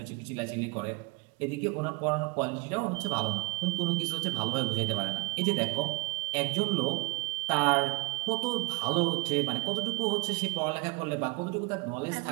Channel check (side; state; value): left; quieter; 24.0 dB